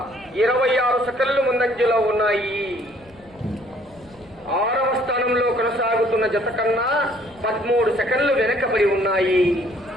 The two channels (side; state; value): left; noise; rumble, 27 dB below the sound